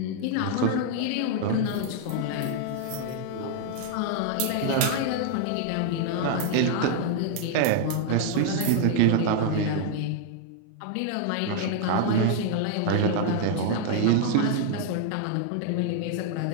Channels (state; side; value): different; both; correlation 0.00